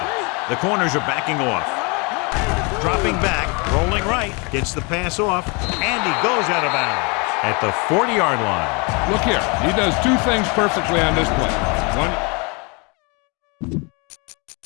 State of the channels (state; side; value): quieter; right; 30.8 dB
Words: The corners are backing off. Dropping back, rolling right, gets the pass off, and he goes out of bounds at the 40-yard line. Look here, he does 2 things perfectly on this play. 1.